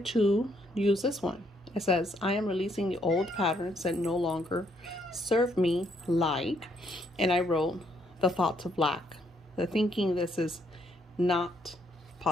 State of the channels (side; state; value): both; normal; correlation 0.72